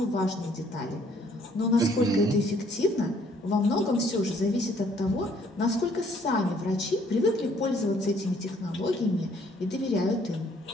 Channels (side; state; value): both; normal; correlation 0.64